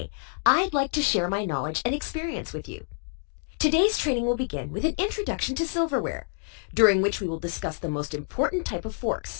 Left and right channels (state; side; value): silent; right; digital silence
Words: I'd like to share my knowledge and experience with you. Today's training will begin with an introduction to silverware, during which we will discuss the most important type of